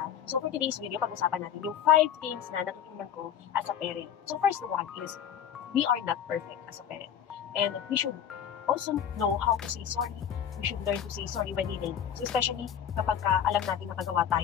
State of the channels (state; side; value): quieter; right; 9.2 dB